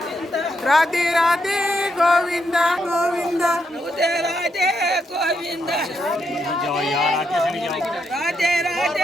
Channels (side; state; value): both; normal; correlation 0.80